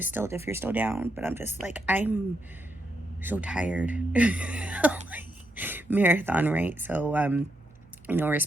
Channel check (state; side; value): noise; right; hum, 29 dB below the sound